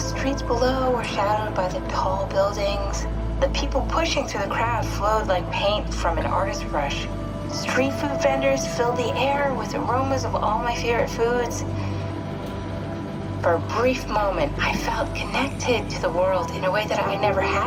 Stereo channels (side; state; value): both; identical; correlation 1.00